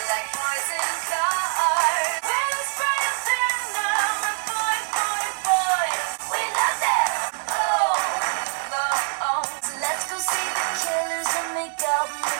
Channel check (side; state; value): left; silent; digital silence